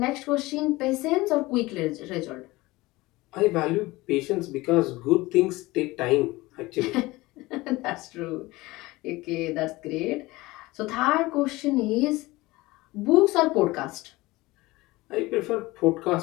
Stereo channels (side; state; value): right; quieter; 20.4 dB